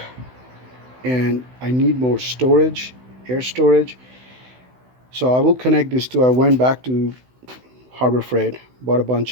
and I need more storage, air storage. So I will connect these two. I went back to Harbor Freight, bought a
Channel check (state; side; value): late; left; 16 ms